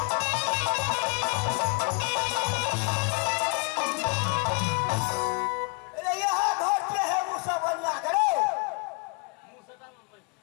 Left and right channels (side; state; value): right; quieter; 32.5 dB